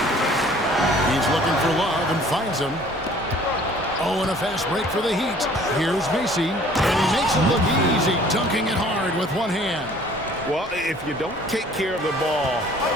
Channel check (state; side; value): normal; both; correlation 0.53